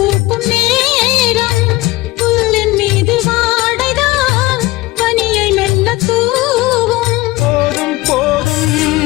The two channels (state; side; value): quieter; right; 19.6 dB